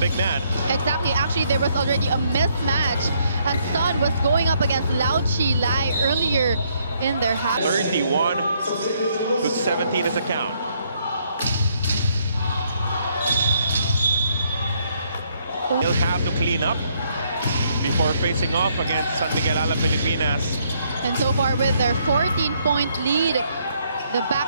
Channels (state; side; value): inverted; both; correlation -0.71